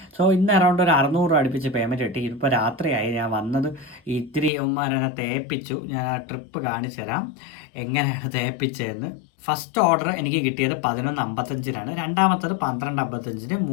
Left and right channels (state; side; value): drops out; right; at 4.5 s